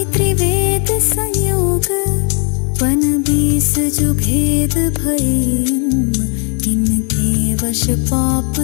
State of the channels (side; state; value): right; quieter; 38.0 dB